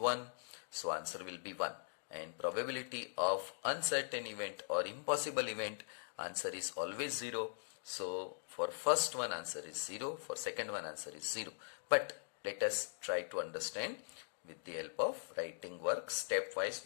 So answer will be 1. And probability of uncertain event or impossible event, answer is always 0. So for first one answer is 0, for second one answer is 0. But let us try to understand with the help of writing work. Stepwise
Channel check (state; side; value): silent; right; digital silence